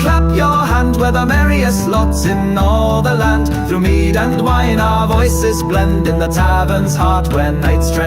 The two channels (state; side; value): identical; both; correlation 1.00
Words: your hand, we're the merriest lots in all the land. Through mead and wine our voices blend, in the tavern's heart where nights